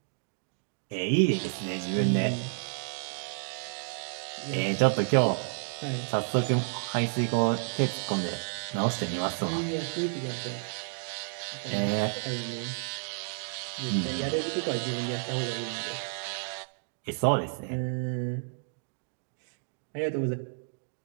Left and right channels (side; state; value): left; silent; digital silence